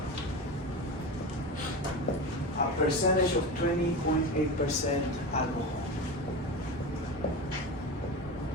a percentage of 20.8% alcohol.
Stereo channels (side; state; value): both; normal; correlation 0.25